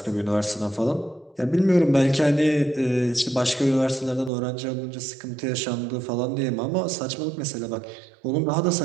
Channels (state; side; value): drops out; left; at 4.3 s